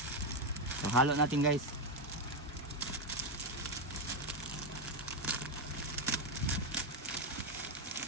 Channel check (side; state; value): both; normal; correlation 0.06